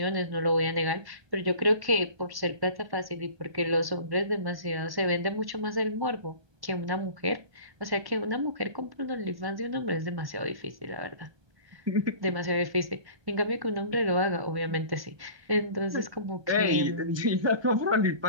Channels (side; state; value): left; late; 1.2 ms